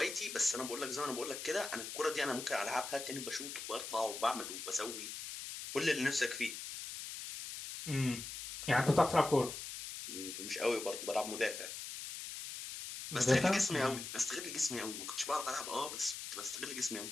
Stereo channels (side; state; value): left; noise; hiss, 8 dB below the sound